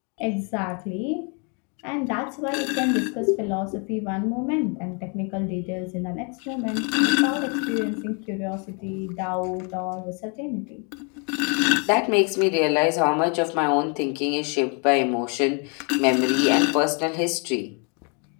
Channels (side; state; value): right; quieter; 36.1 dB